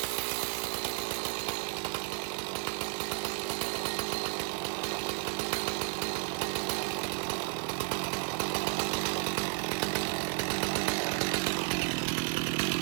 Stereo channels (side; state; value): left; silent; 56 dB below the other